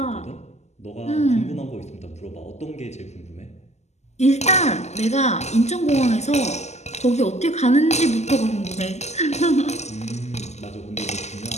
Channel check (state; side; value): late; right; 0.33 ms